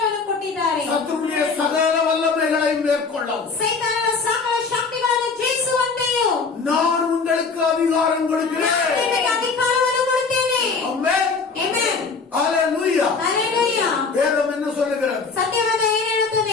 ಕೊಟ್ಟಿದ್ದಾರೆ. சத்துருடைய சகல வல்லமைகளை மேற்கொள்ளவும் ಸೈತಾನನ ಸಕಲ ಶಕ್ತಿಗಳನ್ನು ಜಯಿಸುವಂತೆಯೂ நான் உங்களுக்கு அதிகாரம் கொடுக்கிறேன். ನಾನು ನಿಮಗೆ ಅಧಿಕಾರವನ್ನು ಕೊಡುತ್ತೇನೆ. ஆமென். ಆಮೆನ್. ஹalleluya. ಹಲ್ಲೆಲೂಯಾ. வேதம் என்ன சொல்லுகிறது? ಸತ್ಯವೇದ ಏನು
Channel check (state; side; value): quieter; right; 4.7 dB